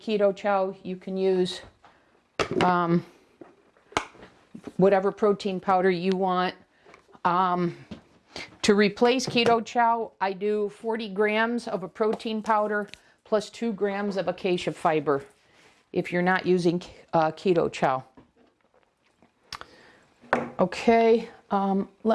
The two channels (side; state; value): both; identical; correlation 1.00